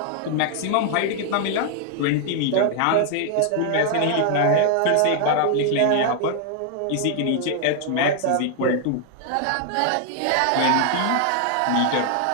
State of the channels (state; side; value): different; both; correlation 0.00